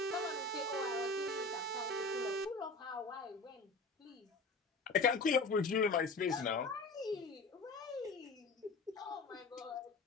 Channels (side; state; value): right; quieter; 3.6 dB